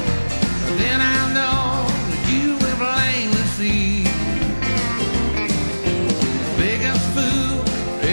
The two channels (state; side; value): inverted; both; correlation -1.00